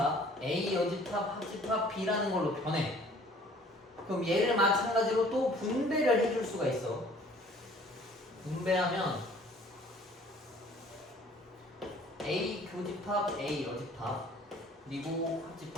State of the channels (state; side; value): normal; both; correlation 0.53